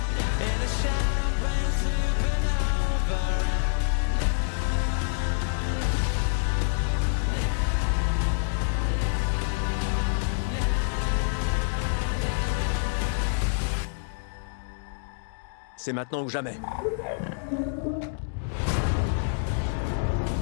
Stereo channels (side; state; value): right; silent; digital silence